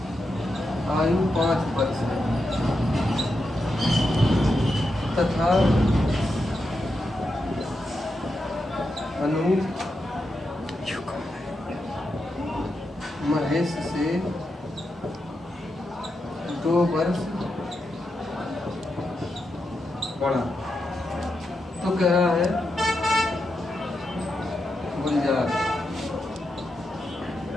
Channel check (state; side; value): normal; both; correlation 0.86